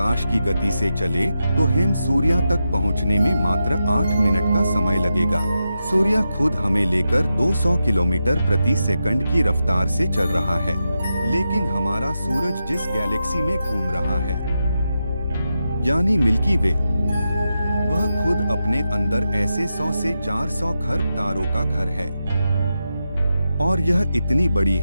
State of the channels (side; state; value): both; inverted; correlation -0.88